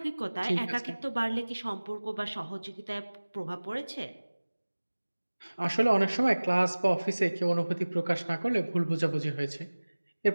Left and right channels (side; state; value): both; inverted; correlation -1.00